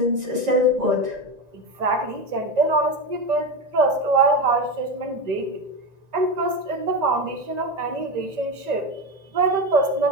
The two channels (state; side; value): late; left; 1.9 ms